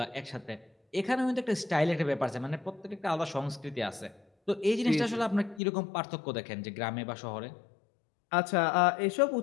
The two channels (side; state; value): right; drops out; at 5.6 s